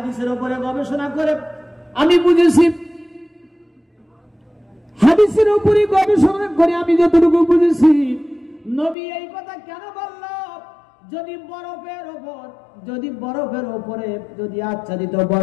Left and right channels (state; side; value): drops out; right; at 9.0 s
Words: উপরে গবেষণা করে আমি বুঝেছি, হাদিসের উপরে গবেষণা করে আমি যতটুকু বুঝেছি, নবী এই কথা কেন বলল? যদি বরফের উপরে যদি আচ্ছাদিত,